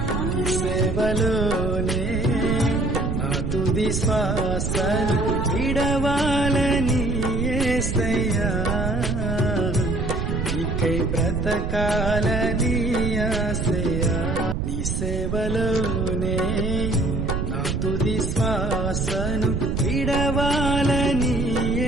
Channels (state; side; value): noise; right; rumble, 1 dB below the sound